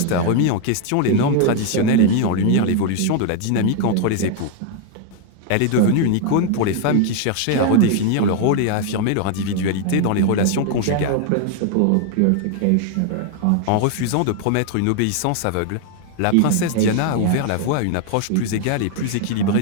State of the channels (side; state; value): both; different; correlation 0.00